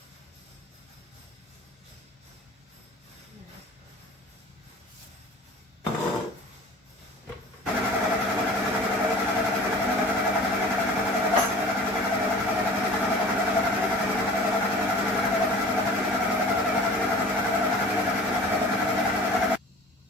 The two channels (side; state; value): both; normal; correlation 0.43